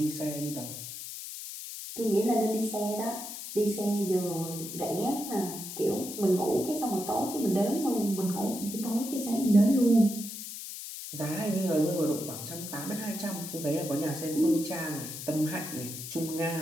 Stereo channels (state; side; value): noise; left; hiss, 9 dB below the sound